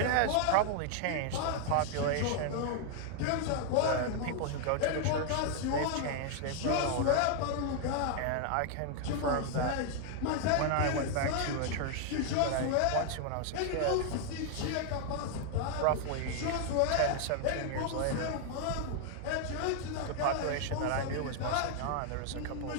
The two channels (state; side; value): different; both; correlation 0.00